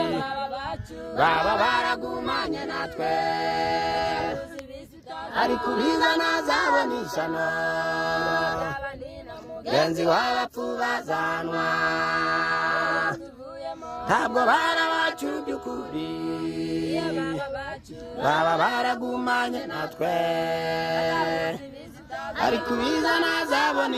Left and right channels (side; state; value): both; identical; correlation 1.00